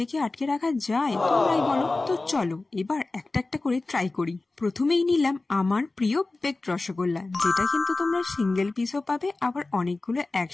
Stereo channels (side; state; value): right; quieter; 3.3 dB